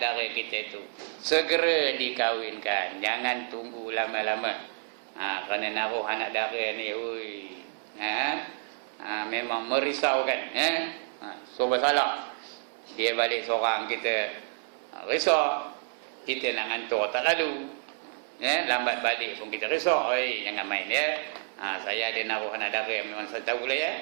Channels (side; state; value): left; silent; 58 dB below the other